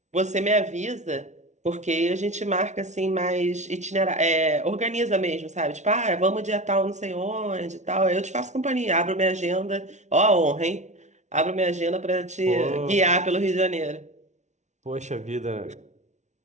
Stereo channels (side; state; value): left; late; 0.33 ms